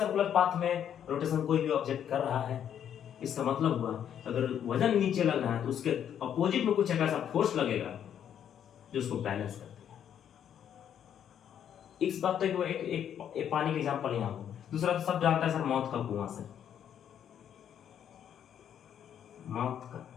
पाथ में रोटेशन कोई भी ऑब्जेक्ट कर रहा है इसका मतलब हुआ अगर वजन नीचे लग रहा है तो उसके अपोजिट में कुछ एक ऐसा फोर्स लगेगा जो उसको बैलेंस कर देगा। इस बात तक एक पानी का एग्जाम्पल यहाँ हो। दूसरा तो सब जानता है सर, मौत का कुआं से, मौत का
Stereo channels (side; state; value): right; quieter; 9.3 dB